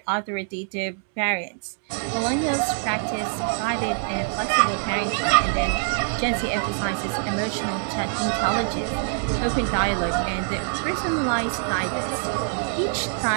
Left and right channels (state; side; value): silent; left; 57 dB below the other